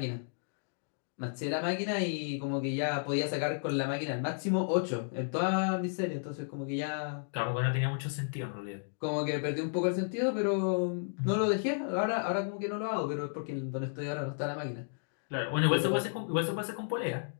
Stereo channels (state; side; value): silent; right; digital silence